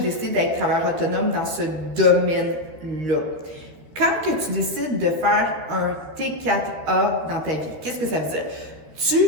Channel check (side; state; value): left; late; 13 ms